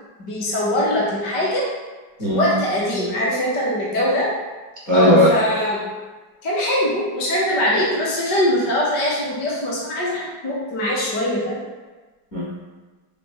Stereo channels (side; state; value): right; late; 5.1 ms